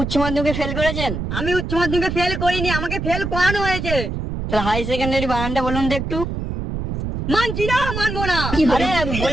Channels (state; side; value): noise; right; rumble, 4 dB below the sound